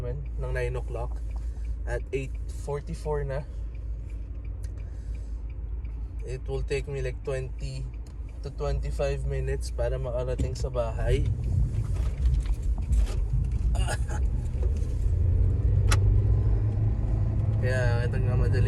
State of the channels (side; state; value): both; identical; correlation 1.00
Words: ng 9 o'clock. At 8:44 na. It will take me like 20 to 25 minutes para makarating sa bahay. Kaya